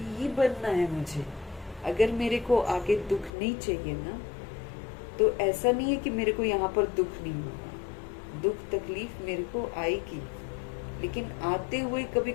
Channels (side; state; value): right; drops out; at 3.3 s